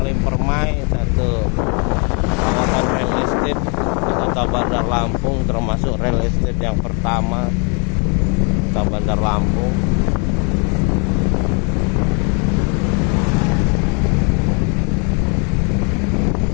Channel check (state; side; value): quieter; right; 35.9 dB